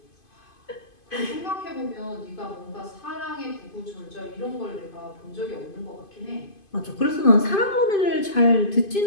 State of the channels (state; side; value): late; right; 2.5 ms